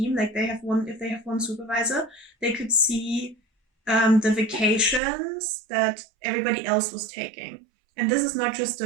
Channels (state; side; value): drops out; left; at 5.0 s